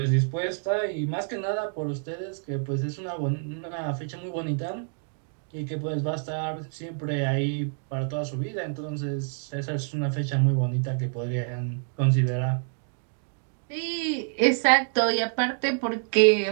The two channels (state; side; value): silent; left; 60 dB below the other